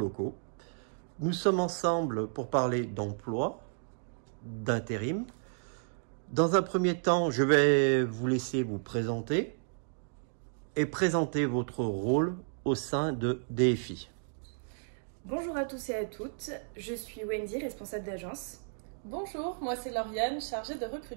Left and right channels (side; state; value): left; silent; digital silence